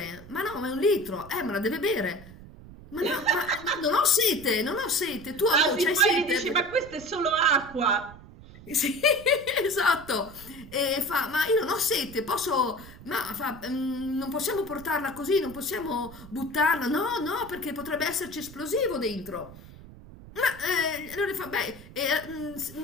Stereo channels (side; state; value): right; noise; rumble, 18 dB below the sound